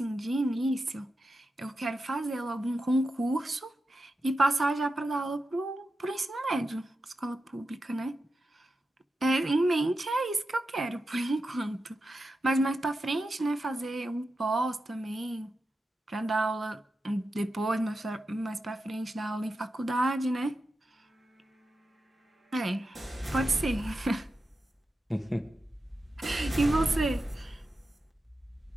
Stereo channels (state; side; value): normal; both; correlation 0.90